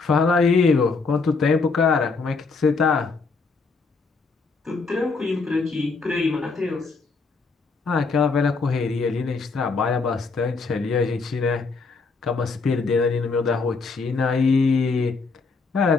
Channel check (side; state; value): right; quieter; 4.4 dB